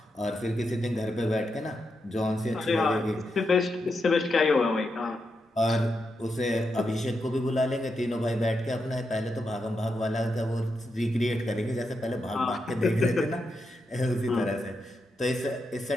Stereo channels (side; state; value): both; normal; correlation 0.85